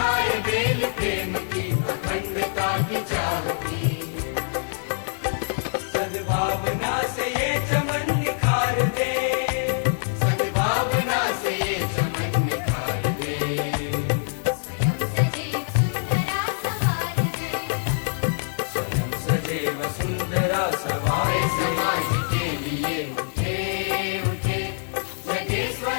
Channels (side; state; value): right; silent; digital silence